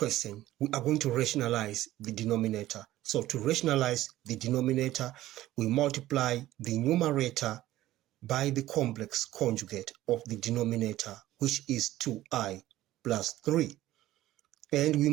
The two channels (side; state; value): left; quieter; 15.1 dB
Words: we are going to rationalize the denominator. So to rationalize the denominator, we multiply the numerator by the complex conjugate of the denominator, which is 2i plus 3. And we